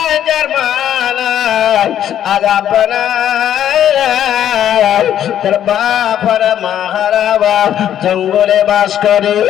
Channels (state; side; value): quieter; right; 10.6 dB